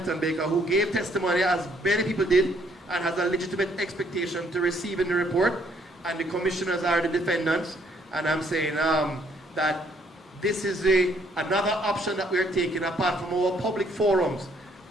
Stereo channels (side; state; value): both; normal; correlation 0.66